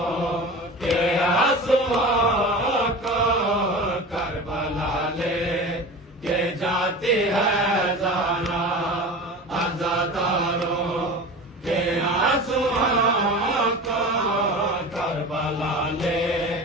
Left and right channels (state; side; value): normal; both; correlation 0.33